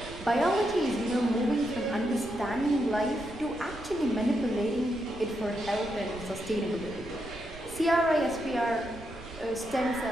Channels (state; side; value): noise; right; rumble, 16 dB below the sound